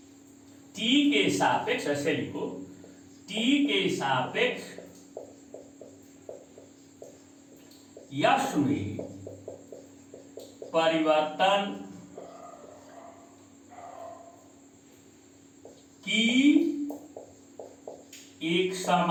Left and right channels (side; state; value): both; identical; correlation 1.00